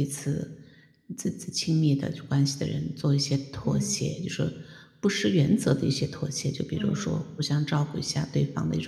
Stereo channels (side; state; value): both; identical; correlation 1.00